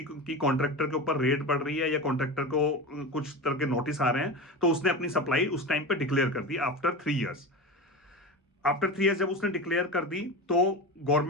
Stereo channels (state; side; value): normal; both; correlation 0.26